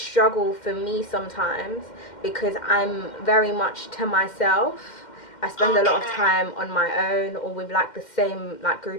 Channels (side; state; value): right; late; 2.1 ms